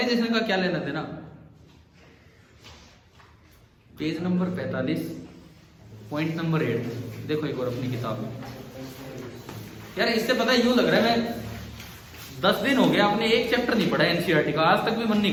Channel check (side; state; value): both; identical; correlation 1.00